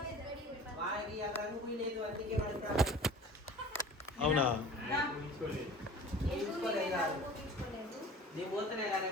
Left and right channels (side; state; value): both; normal; correlation 0.42